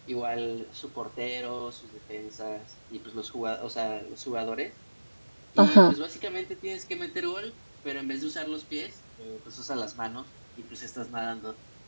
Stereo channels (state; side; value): inverted; both; correlation -1.00